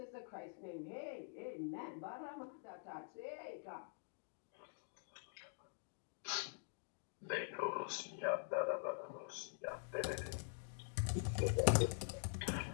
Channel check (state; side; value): silent; right; digital silence